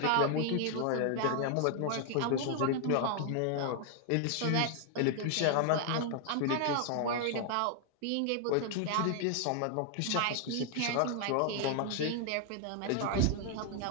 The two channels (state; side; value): different; both; correlation 0.00